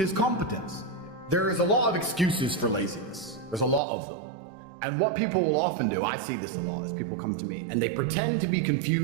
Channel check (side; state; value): left; drops out; at 3.8 s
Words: competence. There is a lot of excuses for laziness. There's a lot of them. And what people will often do, I see this a lot, is people come to me and they pretend to be